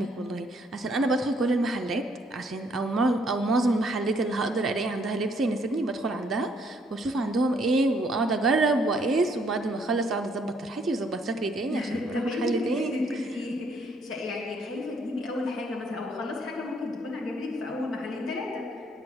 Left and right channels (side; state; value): both; normal; correlation 0.67